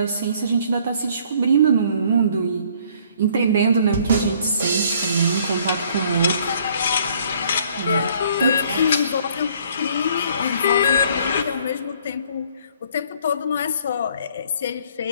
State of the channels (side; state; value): both; inverted; correlation -0.60